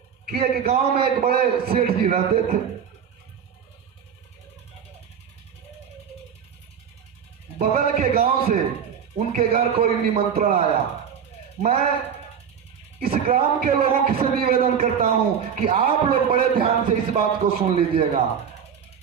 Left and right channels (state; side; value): quieter; left; 7.6 dB